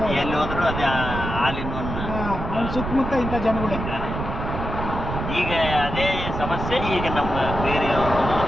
ಎಲ್ಲಿ ಹೋದ್ರು ಅದೇ ಹಾಲಿನ ಅವ್ನ ಸುತ್ತಮುತ್ತ ಇಂಥ ಜನಗಳೇ. ಈಗ ಅದೇ ಸಮಸ್ಯೆ ಈಗ ನಮ್ಮ ಬೇರೆ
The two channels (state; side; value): noise; right; rumble, 5 dB below the sound